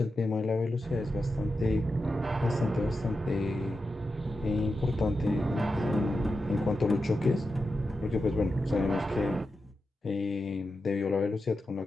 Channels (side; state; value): both; normal; correlation 0.89